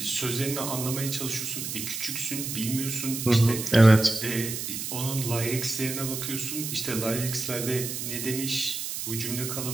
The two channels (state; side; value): noise; right; hiss, 5 dB below the sound